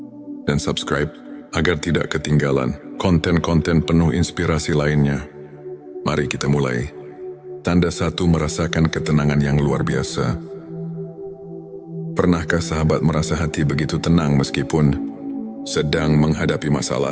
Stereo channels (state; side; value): identical; both; correlation 1.00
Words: Dan subscribe agar tidak ketinggalan konten-konten penuh inspirasi lainnya. Mari kita mulai. Tanda 1, merasakan ketenangan yang luar biasa. Pernahkah sahabat merasa hati begitu tenang meskipun sedang menghadapi